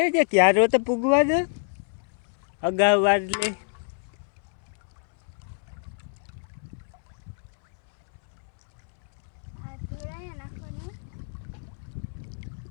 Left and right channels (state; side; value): silent; right; 60 dB below the other